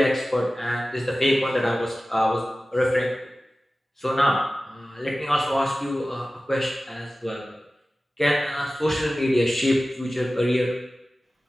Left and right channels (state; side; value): normal; both; correlation 0.96